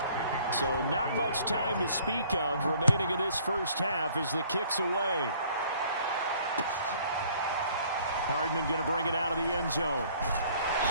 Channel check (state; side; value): inverted; both; correlation -0.57